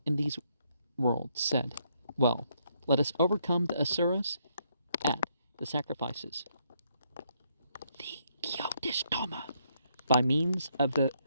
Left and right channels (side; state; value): both; inverted; correlation -0.74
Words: in these worlds, said, "Well, let us overcome the Asuras at the sacrifices, the Kyodishtama, by means of the